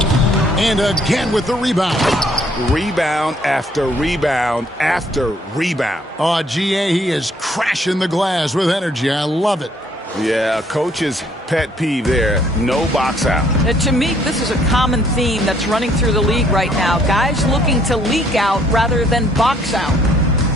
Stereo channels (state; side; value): normal; both; correlation 0.65